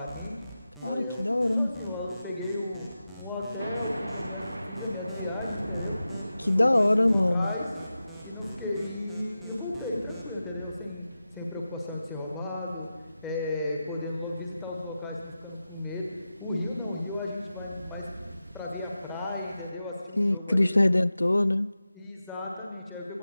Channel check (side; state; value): both; inverted; correlation -0.93